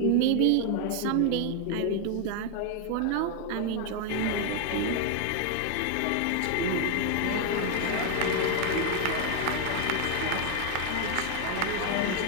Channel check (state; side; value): different; both; correlation 0.00